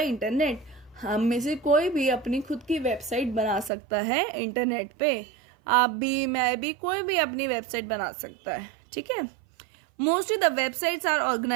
हम में से कोई भी अपनी खुद की वेबसाइट बना सकता है इंटरनेट पे। आप भी, मैं भी, कोई भी अपनी वेबसाइट बना सकता है। ठीक है, mostly the websites are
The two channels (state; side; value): drops out; left; at 3.7 s